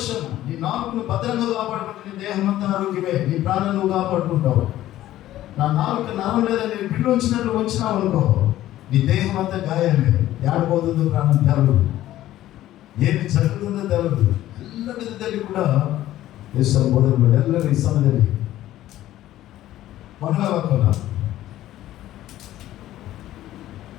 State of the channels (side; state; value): right; quieter; 14.0 dB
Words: నీ 4ను భద్రంగా కాపాడుకుంటే నీ దేహం అంతా ఆరోగ్యమే, నీ ప్రాణం నువ్వు కాపాడుకుంటావు. నా 4 నరం లేదా నేను బిల్లు వచ్చినట్లు వచ్చినావు అనుకో, నీ దేహం అంతా గాయాలే. ఏడబోతుందో ప్రాణం తెలదు, ఏమి జరుగుతుందో తెలదు. ಎಲ್ಲ ವಿಧದಲ್ಲಿ ಕೂಡ ಯೇಸು ಬೋಧನೆ ಎಲ್ಲರೂ ಈ ಸಮಯದಲ್ಲಿ ಮನಗಾಕೋಣ.